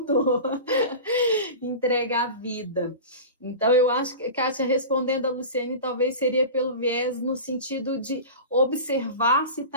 Entrega a vida. Então, eu acho que, Kátia, respondendo a Luciene, talvez seria pelo viés no sentido de observar se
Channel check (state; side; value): inverted; both; correlation -0.31